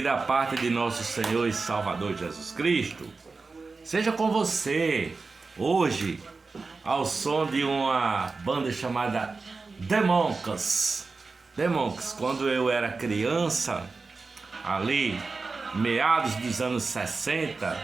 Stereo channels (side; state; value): left; quieter; 4.1 dB